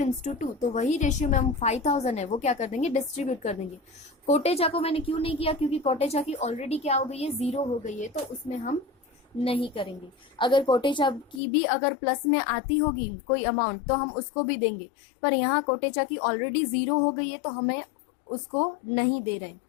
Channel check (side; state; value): right; drops out; at 11.4 s